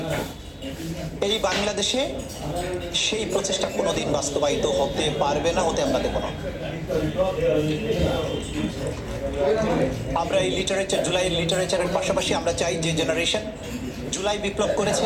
এই বাংলাদেশে সেই প্রচেষ্টা কোনোদিন বাস্তবায়িত হতে পারবে না, হতে আমরা দেব না। আমরা এই লিটারেচার, জুলাইয়ের লিটারেচারের পাশাপাশি আমরা চাই যে জেনারেশন জুলাই বিপ্লব করেছে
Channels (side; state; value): both; identical; correlation 1.00